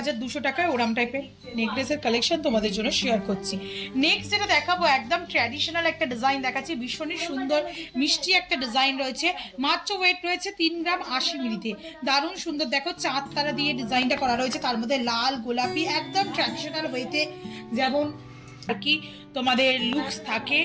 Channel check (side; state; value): both; identical; correlation 1.00